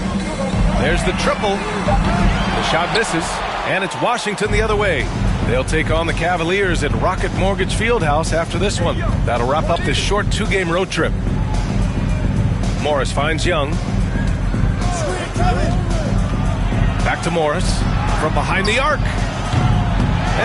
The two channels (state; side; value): identical; both; correlation 1.00